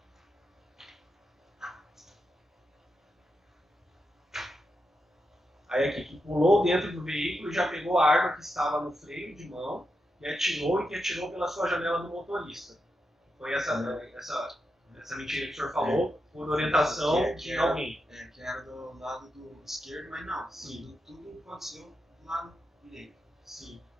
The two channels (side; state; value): both; normal; correlation 0.86